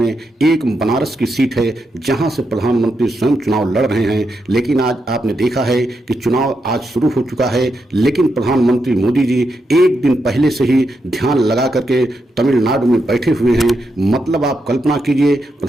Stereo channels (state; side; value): normal; both; correlation 0.84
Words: एक बनारस की सीट है, जहां से प्रधानमंत्री स्वयं चुनाव लड़ रहे हैं। लेकिन आज आपने देखा है कि चुनाव आज शुरू हो चुका है, लेकिन प्रधानमंत्री मोदी जी एक दिन पहले से ही ध्यान लगा करके तमिलनाडु में बैठे हुए हैं। मतलब आप कल्पना कीजिए,